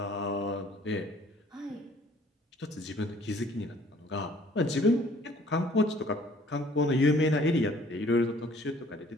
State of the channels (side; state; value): both; normal; correlation 0.57